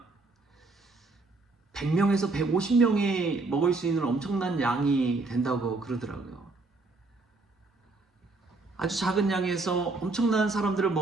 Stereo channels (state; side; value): quieter; left; 3.4 dB